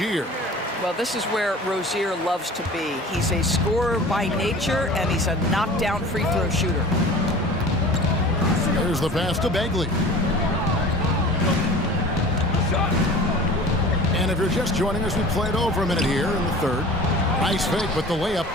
Well, this is where Rozier loves to be. He's a scorer by nature, and he's a knockdown free throw shooter. There's the pass to Bagley. And if you're just joining us, we played over a minute here in the third. Nice fake, but the layup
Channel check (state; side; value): normal; both; correlation 0.41